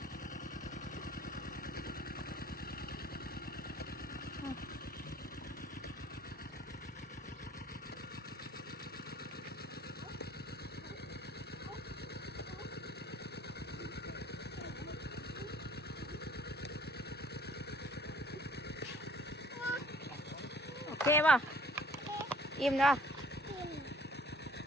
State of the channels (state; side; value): normal; both; correlation 0.55